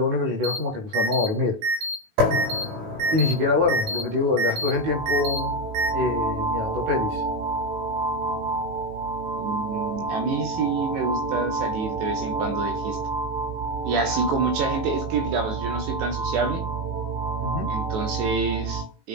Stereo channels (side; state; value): left; late; 18 ms